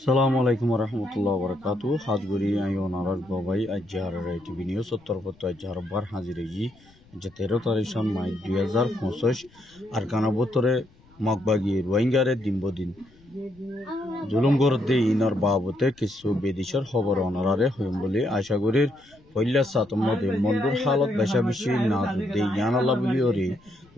সালামু আলাইকুম রহমতুল্লাহ বরকাতু হাজগুড়ি আইও নারাজ বাবাই আজহার টিভি নিউজ উত্তরপত্র আজহার বার হাজিরেগি যে 13 তারিখ মাই 2025 আর কানাবতরে মগবাগি রোহিঙ্গারে দিনবদিন জুলুম গরদে ইনার বাবতে কিছু বেদিশর খবর অনারারে হইম বলে আশা করির পইলা সাতমদে মন্ডুর হালত বেশা বেশি না দে ইয়ানালা বলি ওরে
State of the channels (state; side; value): noise; left; rumble, 28 dB below the sound